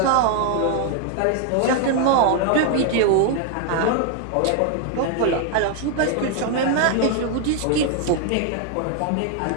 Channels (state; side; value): different; both; correlation 0.00